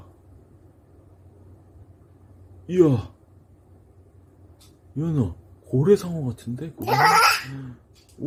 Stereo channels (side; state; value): both; identical; correlation 1.00